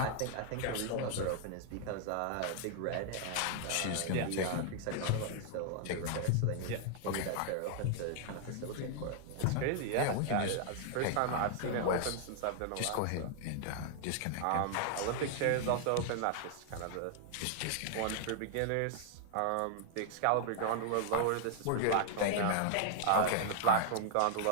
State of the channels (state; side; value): different; both; correlation -0.01